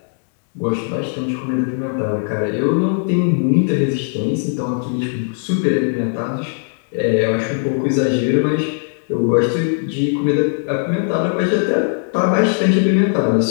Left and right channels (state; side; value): silent; right; digital silence